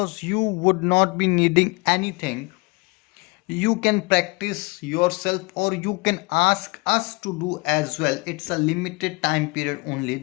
you would not be needing anything. You can practice yourself or you can ask us to do as well. It's a limited time period only.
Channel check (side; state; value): right; quieter; 27.2 dB